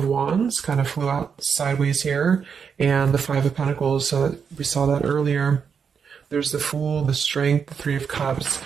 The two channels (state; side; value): quieter; left; 6.5 dB